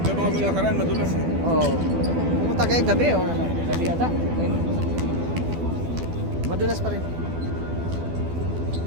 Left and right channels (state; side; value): late; left; 12 ms